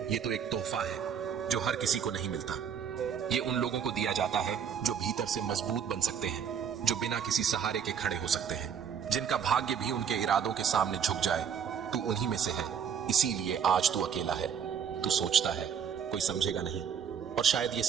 ये तो एक तोहफा है जो हर किसी को नहीं मिलता। ये उन लोगों को दिया जाता है जो भीतर से मजबूत बन सकते हैं, जो बिना किसी सहारे के खड़े हो सकते हैं, जिनका भाग्य भी उनके इरादों के सामने झुक जाए। तू उन्हीं में से है, इसीलिए आज तू अकेला है। तू सोचता है कोई समझेगा नहीं, और शायद ये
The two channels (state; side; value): quieter; left; 7.7 dB